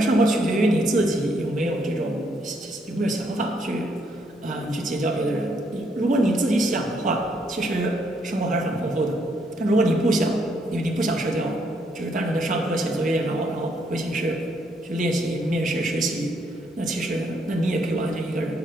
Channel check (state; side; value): normal; both; correlation 0.73